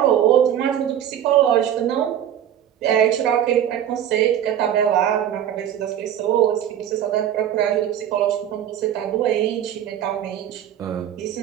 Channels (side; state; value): left; quieter; 10.3 dB